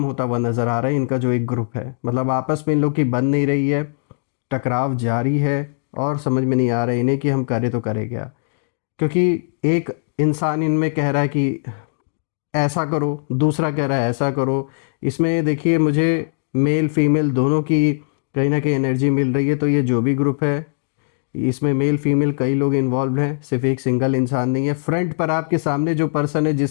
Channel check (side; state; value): right; silent; digital silence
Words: होता हुआ नज़र आ रहा है। इनका जो एक ग्रुप है, मतलब आपस में इन लोग की बन नहीं रही है, टकराव जारी है और समझ में नहीं आ रहा है इन्हें कि हम करें तो करें क्या। क्योंकि एक इंसान इनमें कह रहा है कि ऐसा करो, दूसरा कह रहा है ऐसा करो। इसमें देखिए मुझे मेल फीमेल दोनों की कहीं ना कहीं एनर्जी मिल रही है। तो ये जो भी ग्रुप है इसमें मेल फीमेल कई लोग इन्वॉल्व हैं, सिर्फ एक सिंगल इंसान नहीं है। फ्रंट पर आपके सामने जो पर्सन है